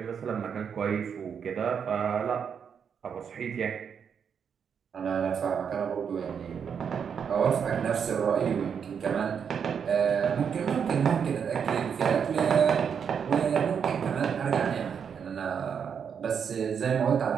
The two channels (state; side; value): quieter; left; 7.2 dB